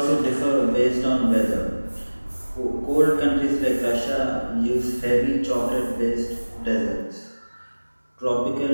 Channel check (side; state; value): both; inverted; correlation -1.00